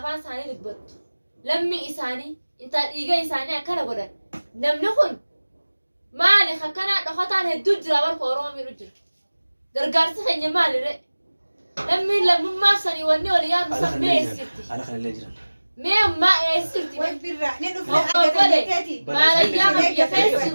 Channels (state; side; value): inverted; both; correlation -1.00